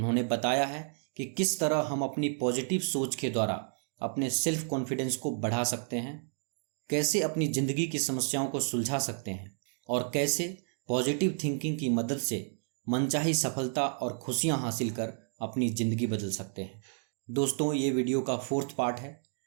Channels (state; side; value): silent; left; 57 dB below the other